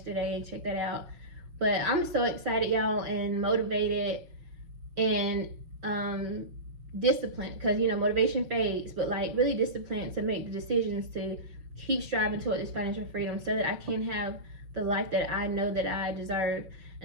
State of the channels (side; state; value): left; late; 5.9 ms